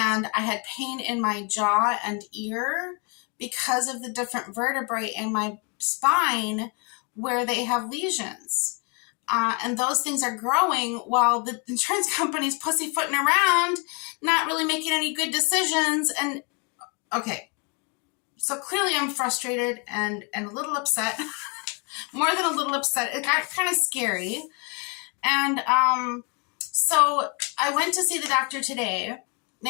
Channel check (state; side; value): quieter; right; 34.2 dB